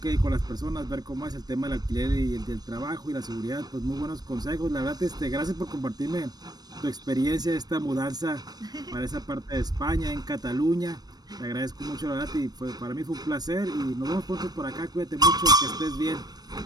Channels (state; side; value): late; left; 0.19 ms